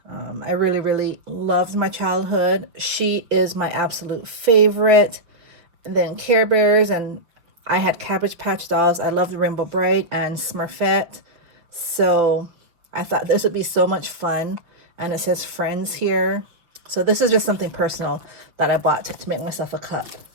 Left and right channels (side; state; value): left; late; 6.2 ms